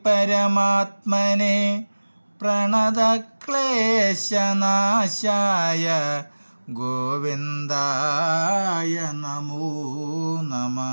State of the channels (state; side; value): inverted; both; correlation -1.00